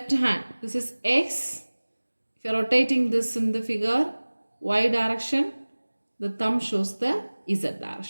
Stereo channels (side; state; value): both; inverted; correlation -1.00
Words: hand. This is x. If you are rotating this in the figure, y direction, the thumb shows the z